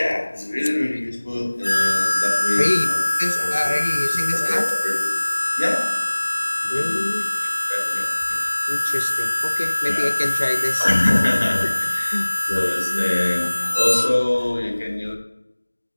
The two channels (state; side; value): inverted; both; correlation -1.00